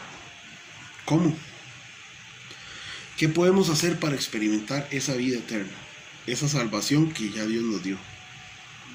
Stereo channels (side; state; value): both; identical; correlation 1.00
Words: ¿Cómo? ¿Qué podemos hacer para experimentar esa vida eterna? Esa salvación que ya Dios nos dio.